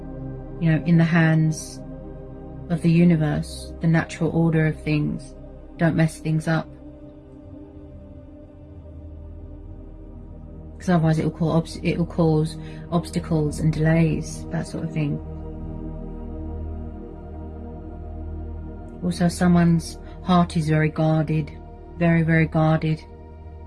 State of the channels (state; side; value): identical; both; correlation 1.00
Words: you know, in the hands of the universe, the natural order of things. Don't mess things up. Because otherwise it will cause obstacles and delays, that sort of thing. Also, someone's heart is very guarded, very, very guarded.